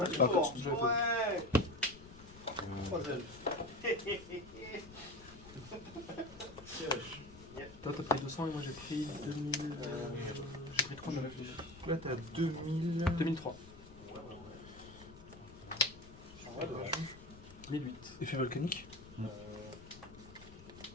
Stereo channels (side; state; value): left; noise; rumble, 18 dB below the sound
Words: pas à cause. Toi, t'as pris 200 et moi j'ai pris 2000. J'ai pris 3000. Là, t'as 2000. 2003. 1008. Effet volcanique.